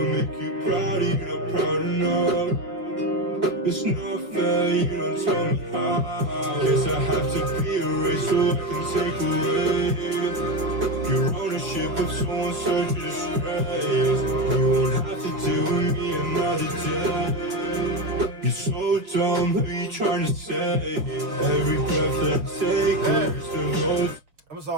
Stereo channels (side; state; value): left; late; 6.1 ms